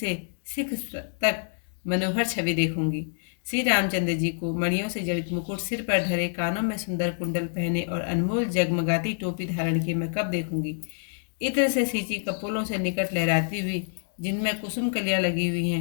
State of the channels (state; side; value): silent; right; digital silence